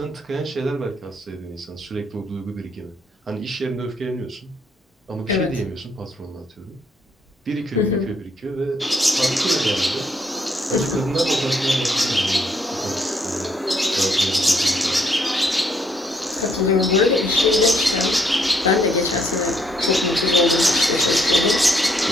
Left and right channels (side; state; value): both; normal; correlation 0.71